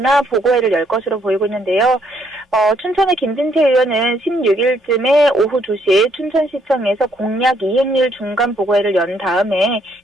보고회를 열 것으로 보이고 있는데요. 춘천의 김진태 의원은 16일쯤에 오후 2시 춘천시청에서 공약 이행률 중간 보고회를 연 다음에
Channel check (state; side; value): normal; both; correlation 0.70